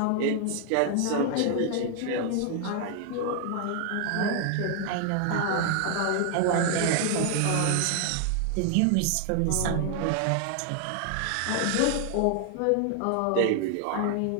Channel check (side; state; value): both; different; correlation 0.00